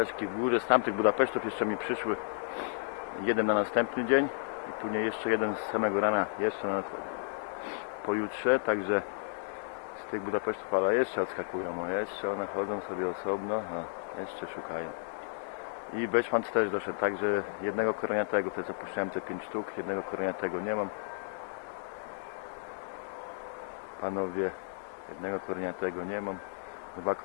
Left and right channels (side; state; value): right; silent; digital silence